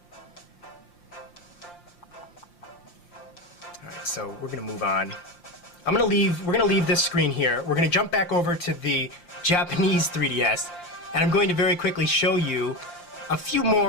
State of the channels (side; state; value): right; late; 5.7 ms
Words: Alright, so we're gonna move on. We're gonna leave this screen here. We're gonna jump back over to the Japanese 3DS, and I'm going to very quickly show you a few